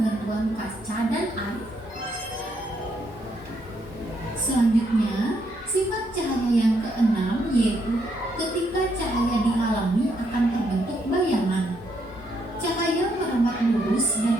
kaca dan air. Selanjutnya, sifat cahaya yang keenam yaitu ketika cahaya dihalangi akan terbentuk bayangan. Cahaya merambat lurus dan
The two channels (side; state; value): both; normal; correlation 0.75